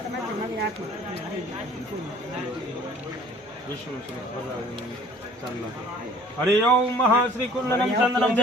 વિષ્ણુ હરિઓમ મહા શ્રી કુંડનમ ચંદનમ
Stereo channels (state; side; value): normal; both; correlation 0.51